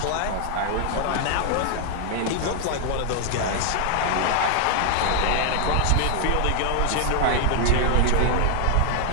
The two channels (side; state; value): both; different; correlation 0.00